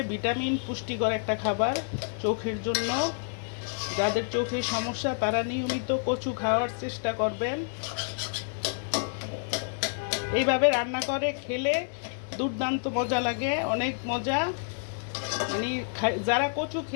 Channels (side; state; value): right; silent; digital silence